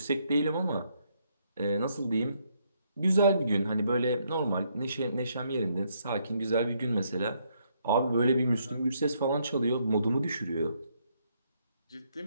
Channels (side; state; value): both; inverted; correlation -0.73